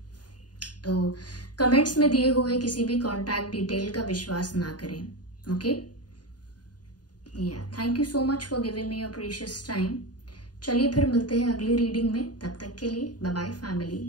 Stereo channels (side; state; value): right; late; 0.69 ms